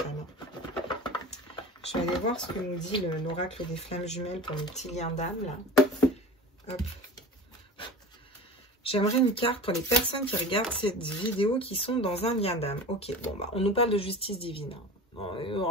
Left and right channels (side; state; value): both; normal; correlation 0.34